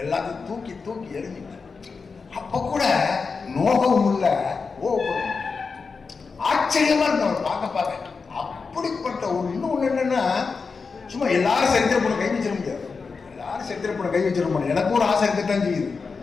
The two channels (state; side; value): quieter; right; 4.8 dB